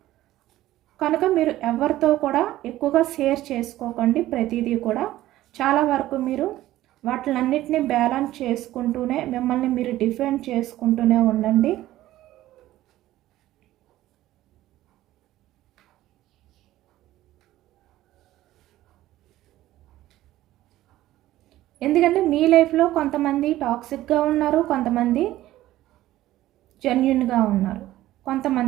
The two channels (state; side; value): quieter; left; 15.0 dB